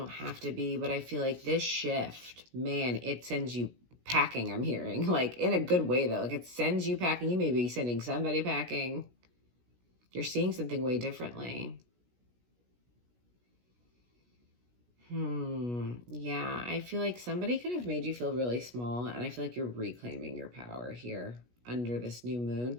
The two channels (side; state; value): left; late; 17 ms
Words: have to be, but I feel like this shift, man, it sends you packing, I'm hearing. Like, in a good way, though. Like, it sends you packing. You may be sending somebody packing. You're seeing something way differently. Yeah, I feel like somebody could have made you feel really small, and I feel like you're reclaiming your power here under this new moon.